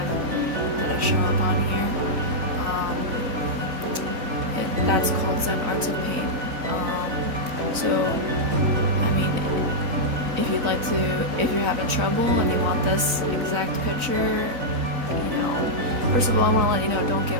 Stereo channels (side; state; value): left; late; 4.0 ms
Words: I show up on here. That's called Zen Arts of Paint. So, I mean, if you'd like to, if you're having trouble and you want this exact picture, you know, first of all, I want to let you know, don't